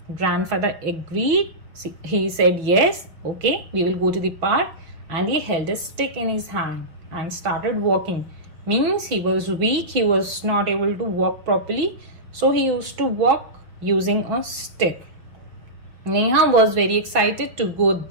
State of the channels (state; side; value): late; left; 6.0 ms